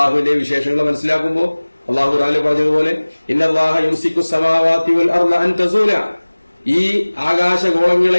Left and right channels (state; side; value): inverted; both; correlation -1.00